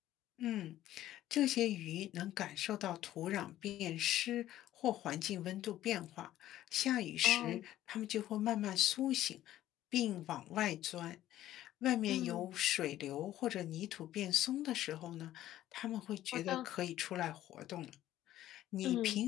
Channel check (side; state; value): right; quieter; 13.5 dB